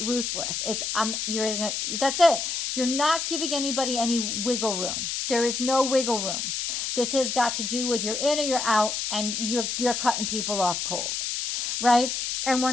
That's it. You're not giving anybody any wiggle room. There is no wiggle room. This has got to do with you're in or you're out, and you're cutting people off cold. Right? And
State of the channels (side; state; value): left; noise; hiss, 2 dB below the sound